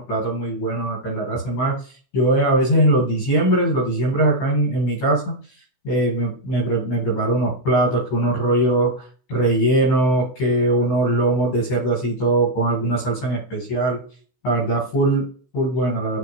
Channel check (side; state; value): right; late; 16 ms